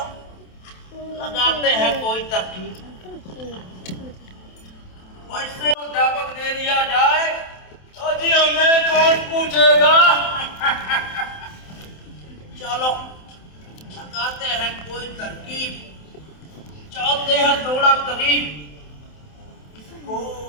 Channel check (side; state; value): right; late; 27 ms